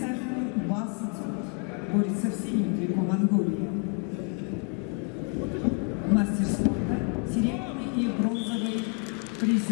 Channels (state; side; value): quieter; right; 38.6 dB